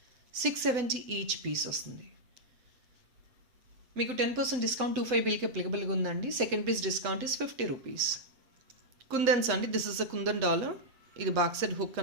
670 each piece వస్తుంది. మీకు 10% డిస్కౌంట్ 25 బిల్కి అప్లికబుల్గా ఉందండి. Second piece discount is 50 rupees. Kundans అండి, this is a kundan dollar. ఇది back side hook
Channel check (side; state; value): left; late; 8.1 ms